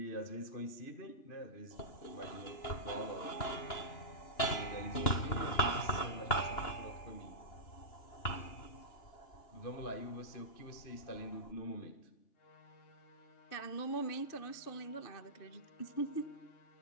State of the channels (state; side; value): late; right; 2.9 ms